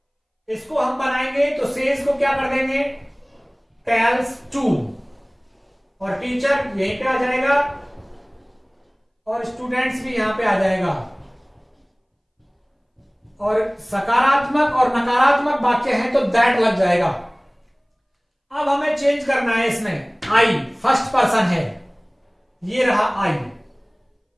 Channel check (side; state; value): both; identical; correlation 1.00